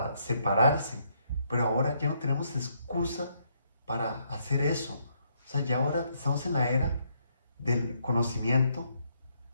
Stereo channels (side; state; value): both; inverted; correlation -0.73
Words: separarse. Pero ahora ya no tenemos excusa para hacer eso. O sea, ya ahora estamos en la era del conocimiento,